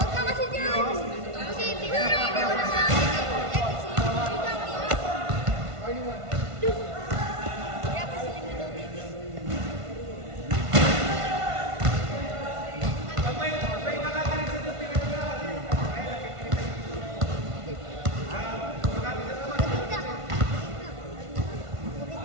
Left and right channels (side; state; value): left; late; 1.5 ms